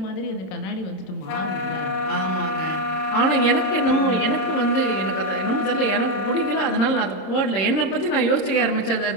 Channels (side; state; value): right; late; 27 ms